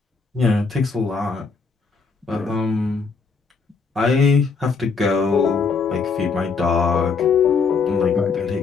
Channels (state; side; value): quieter; right; 4.8 dB